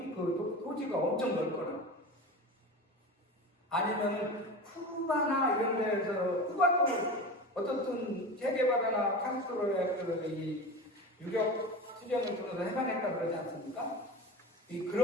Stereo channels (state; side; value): normal; both; correlation 0.29